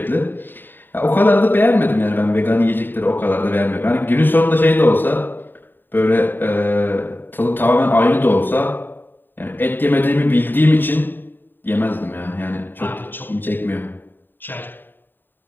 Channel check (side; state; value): right; late; 0.093 ms